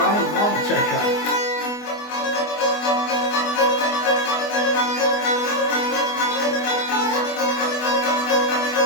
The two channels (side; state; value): right; late; 24 ms